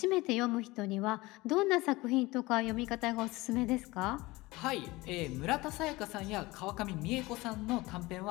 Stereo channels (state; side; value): quieter; right; 21.1 dB